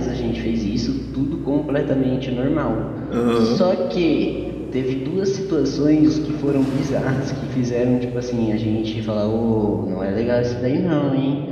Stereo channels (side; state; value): both; identical; correlation 1.00